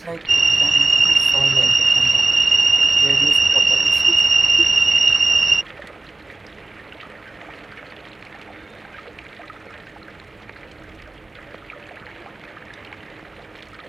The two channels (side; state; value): left; quieter; 3.1 dB